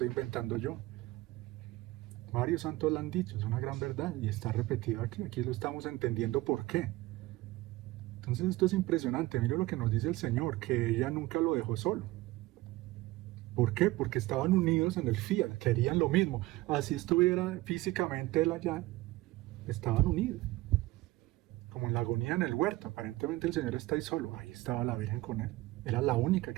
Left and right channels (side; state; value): left; quieter; 18.8 dB